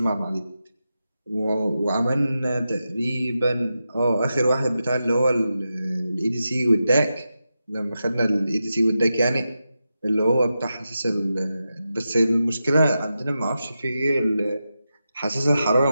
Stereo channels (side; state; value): both; inverted; correlation -0.90